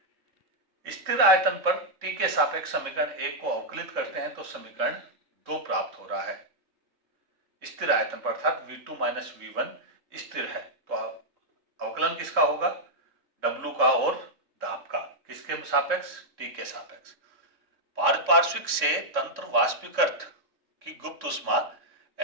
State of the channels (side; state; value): left; late; 3.6 ms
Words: स्थिर आयतन पर T के सापेक्ष समीकरण 1 को अवकलित करते हैं तो समीकरण 2 प्राप्त हो रहा है। स्थिर आयतन पर अर्थात V2 माइनस V1 स्थिर है, तो अवकलन किसका होगा, W का और दाब का, किसके सापेक्ष, T के सापेक्ष। पारपार्श्विक से तंत्र वाष्पीकृत की गुप्त ऊष्मा